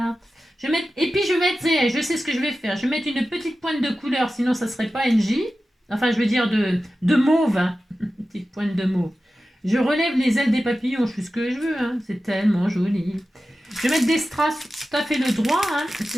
Je vais mettre, et puis je vais mettre, je sais ce que je vais faire. Je vais mettre une petite pointe de couleur, sinon ça serait pas NJ. Enfin, je veux dire de mauve. Hein. Une petite pointe de mauve. Je relève les ailes des papillons, je fais ce que je veux. Hein. C'est tellement joli. Je vais mettre des strass tout à fait le droit. Hein.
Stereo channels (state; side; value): normal; both; correlation 0.94